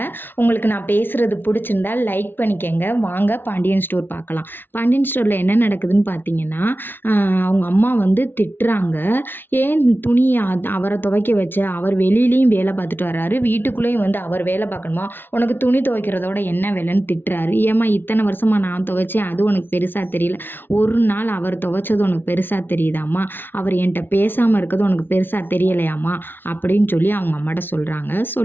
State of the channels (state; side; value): late; right; 0.10 ms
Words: உங்களுக்கு நான் பேசுகிறது பிடிச்சிருந்தால் லைக் பண்ணிக்கங்க. வாங்க பாண்டியன் ஸ்டோர் பார்க்கலாம். பாண்டியன் ஸ்டோரில் என்ன நடக்குதுன்னு பார்த்தீங்கன்னா, அவங்க அம்மா வந்து திட்டுறாங்க. ஏன் துணியை அவரை துவைக்க வச்ச, அவர் வெளியிலையும் வேலை பார்த்துட்டு வர்றாரு, வீட்டுக்குள்ளேயும் வந்து அவர் வேலை பார்க்கணுமா? உனக்கு துணி துவைக்கிறதோட என்ன வேலைன்னு திட்டுறாரு. ஏம்மா இத்தனை வருஷமாக நான் துவைச்சேன், அது உனக்கு பெருசாக தெரியல, ஒரு நாள் அவர் துவைச்சது உனக்கு பெருசாக தெரியுதாம்மா, அவர் என்கிட்ட பேசாமல் இருக்கிறது உனக்கு பெருசாக தெரியலையாம்மா அப்படின்னு சொல்லி அவங்க அம்மாட்ட சொல்கிறாங்க.